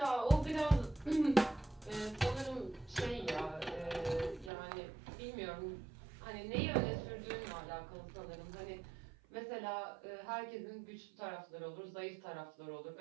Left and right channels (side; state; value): left; drops out; at 4.5 s